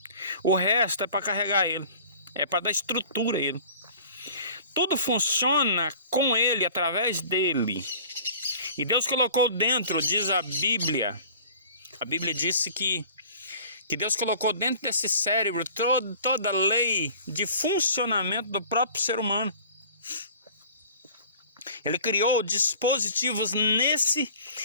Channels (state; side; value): inverted; both; correlation -0.46